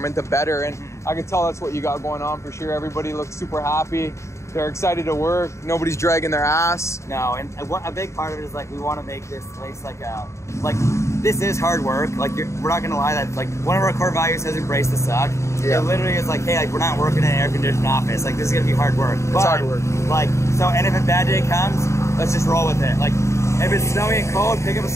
the better. And I can tell that's what you got going on for sure. Everybody looks super happy. They're excited to work. Nobody's dragging their ass. No, and a big part of it is like we want to make this place like this is hard work. Like we're not gonna lie, that like one of our core values has embraced the suck. Yeah. It literally is like, hey, like we're not working in an air conditioned office. Like this is gonna be hard work. It's hard work. Like so, and if a bad day comes, let's just roll with it. Like if it's snowy and cold, pick up a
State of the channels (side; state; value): right; late; 0.14 ms